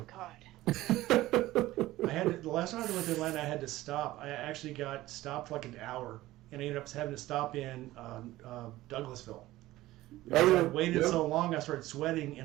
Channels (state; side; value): quieter; left; 16.7 dB